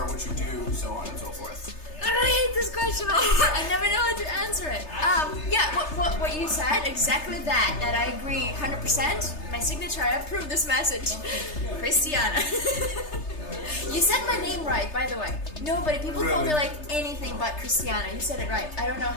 what you do, so on and so forth. I hate this question. I never know how to answer it. What you said, exactly that I agree 100%. My signature, I approve this message. Christiana. You said my name right, by the way. Nobody, people call me like anything but Christiana. You said it right. I don't know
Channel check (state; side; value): late; right; 3.3 ms